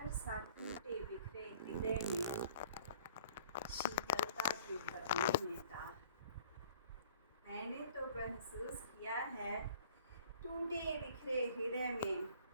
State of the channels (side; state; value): both; inverted; correlation -0.53